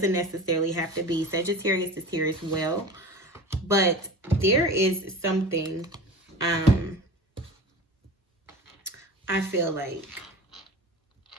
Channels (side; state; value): both; normal; correlation 0.34